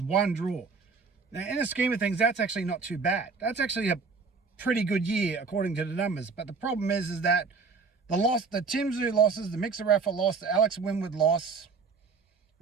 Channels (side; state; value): left; quieter; 4.8 dB